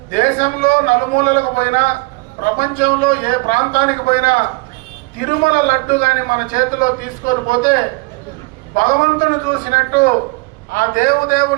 దేశంలో నలుమూలలకు పోయినా, ప్రపంచంలో ఏ ప్రాంతానికి పోయినా తిరుమల లడ్డు కానీ మన చేతిలో తీసుకొని పోతే భగవంతుని చూసినట్టు ఆ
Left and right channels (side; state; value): left; quieter; 26.7 dB